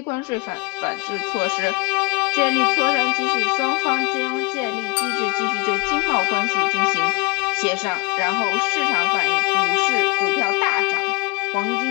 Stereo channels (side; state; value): right; quieter; 25.5 dB